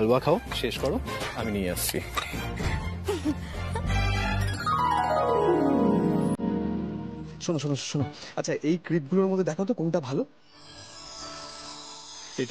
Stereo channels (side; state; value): both; identical; correlation 1.00